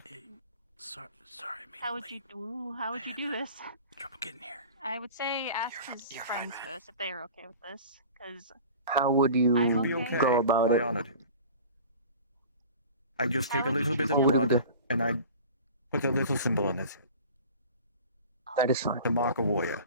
Sorry, How would you do this? trouble getting here. I would say ask his friends first if they are okay with this, because how would you I'm He'll be okay. okay. go about I it? honored him. I just take a How would little you bit of What would you blood do? and I put a little symbol on his head That is fine. to mark a warrior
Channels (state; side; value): inverted; both; correlation -0.40